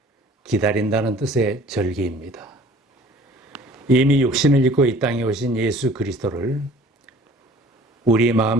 기다린다는 뜻의 절기입니다. 이미 육신을 입고 이 땅에 오신 예수 그리스도를 우리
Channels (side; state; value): both; normal; correlation 0.50